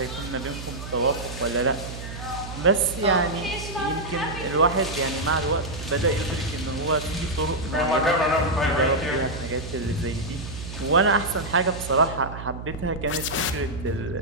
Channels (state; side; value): noise; right; hum, 10 dB below the sound